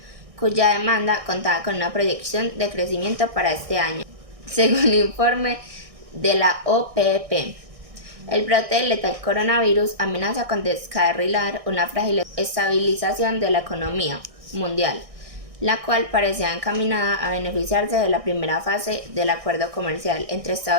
cuya demanda contaba con una proyección de crecimiento para este año, según un informe de la OPEP. El brote del letal coronavirus amenaza con descarrilar una frágil estabilización de la economía mundial, la cual parecía encaminada a beneficiarse de la primera fase del acuerdo comercial entre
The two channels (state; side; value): late; left; 1.6 ms